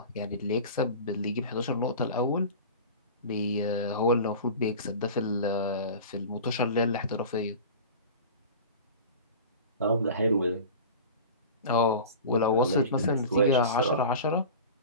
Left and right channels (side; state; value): both; inverted; correlation -0.35